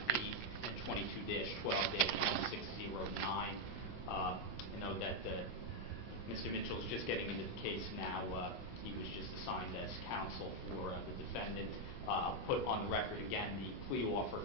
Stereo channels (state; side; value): late; right; 16 ms